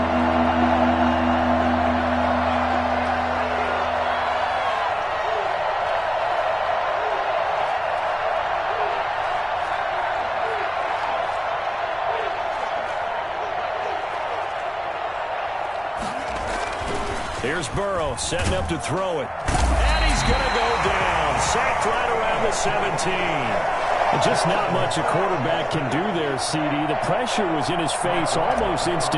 Here's Burrow setting up to throw it. And he's going to go down. Sacked right around the 17. And just not much a quarterback can do there, CD. The pressure was in his face almost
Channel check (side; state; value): both; identical; correlation 1.00